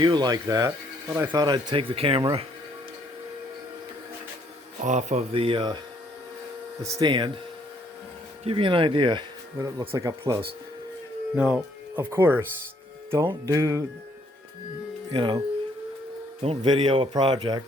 like that, but I thought I'd take the camera off of the stand, give you an idea what it looks like up close. Now, of course, don't don't video a project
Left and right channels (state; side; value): normal; both; correlation 0.67